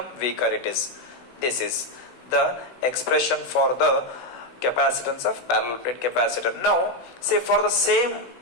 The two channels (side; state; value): right; late; 16 ms